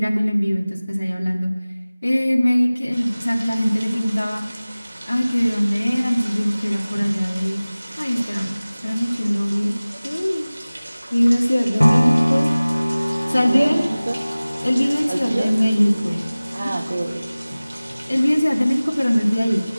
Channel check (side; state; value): both; inverted; correlation -0.99